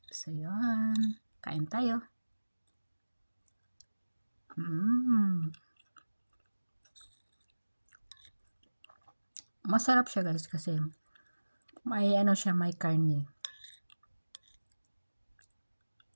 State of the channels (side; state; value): both; inverted; correlation -1.00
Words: So, yun. Kain tayo. Masarap siya guys kasi may siya, may karne.